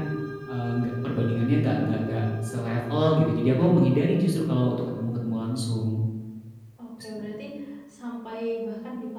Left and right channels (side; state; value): both; identical; correlation 1.00